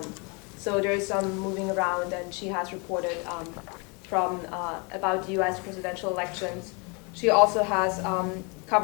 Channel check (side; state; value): right; quieter; 31.9 dB